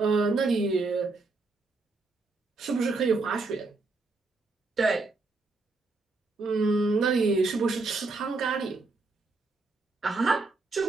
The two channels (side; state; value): left; quieter; 3.6 dB